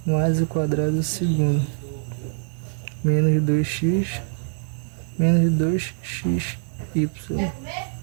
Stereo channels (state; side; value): silent; left; digital silence